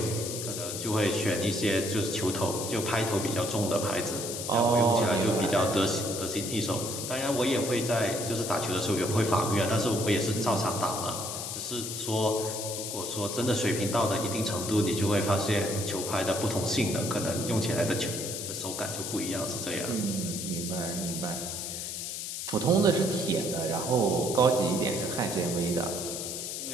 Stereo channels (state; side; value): noise; left; hiss, 5 dB below the sound